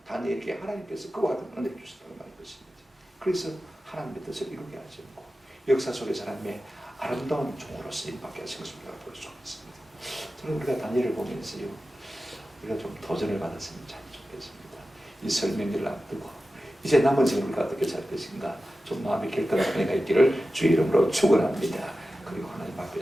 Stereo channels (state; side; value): normal; both; correlation 0.94